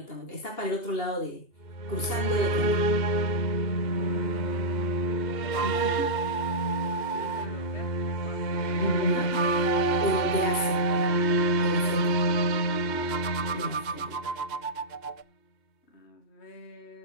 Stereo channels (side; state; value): right; late; 2.8 ms